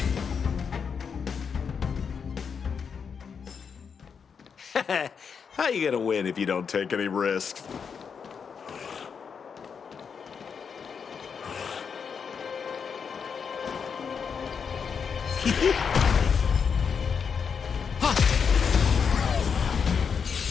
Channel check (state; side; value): quieter; right; 6.4 dB